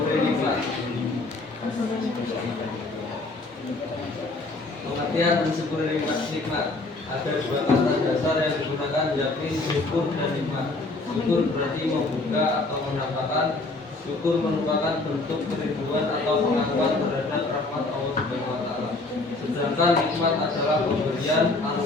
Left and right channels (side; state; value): right; quieter; 3.2 dB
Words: nikmat. Pengertian mensyukuri nikmat ada 2 kata dasar yang digunakan, yakni syukur dan nikmat. Syukur berarti membuka atau mendapatkan. Syukur merupakan bentuk kerinduan atau pengakuan terhadap rahmat Allah Subhanahu wa Ta'ala. Sedangkan nikmat adalah pemberian,